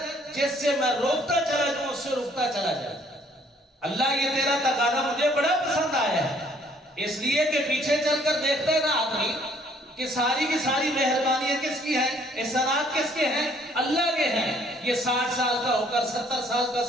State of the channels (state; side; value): normal; both; correlation 0.62